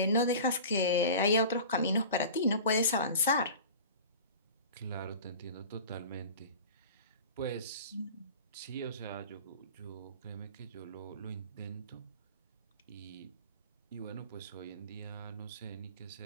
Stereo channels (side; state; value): both; inverted; correlation -0.38